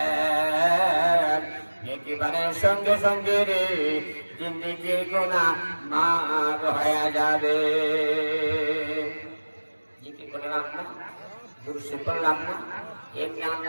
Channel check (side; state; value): both; inverted; correlation -1.00